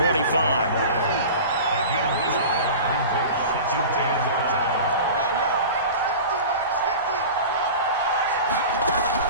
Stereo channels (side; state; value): both; inverted; correlation -0.35